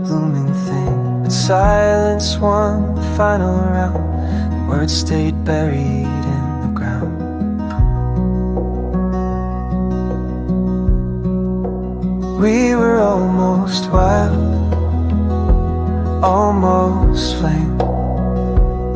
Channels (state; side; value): identical; both; correlation 1.00